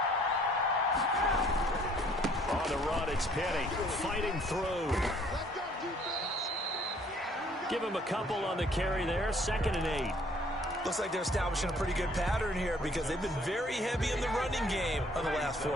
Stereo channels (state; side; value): normal; both; correlation 0.60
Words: On the run, it's Penny fighting through. Give him a couple on the carry there. 2nd and 8. Looks like they're establishing a pretty good pattern here, because they've been very heavy in the running game on the last